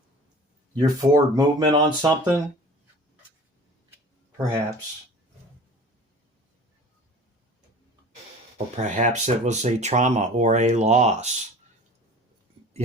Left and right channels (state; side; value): normal; both; correlation 0.42